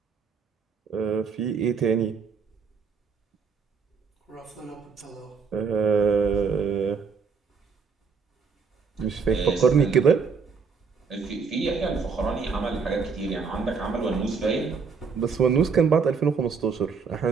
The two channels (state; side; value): quieter; left; 5.5 dB